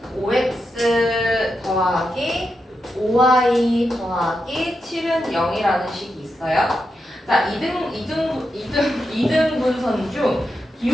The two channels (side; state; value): both; normal; correlation 0.86